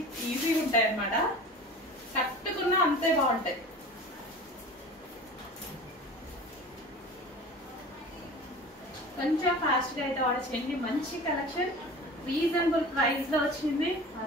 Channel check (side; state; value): both; normal; correlation 0.38